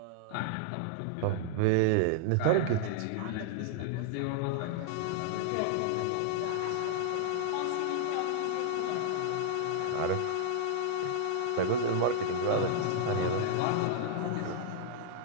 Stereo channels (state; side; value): different; both; correlation -0.01